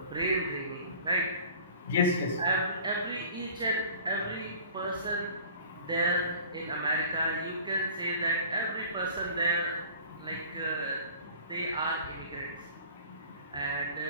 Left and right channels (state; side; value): inverted; both; correlation -0.44